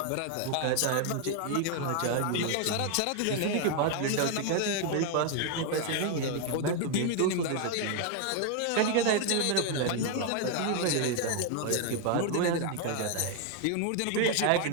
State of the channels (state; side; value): different; both; correlation 0.00